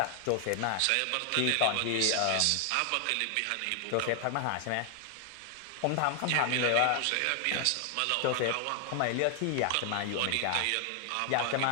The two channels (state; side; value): different; both; correlation 0.00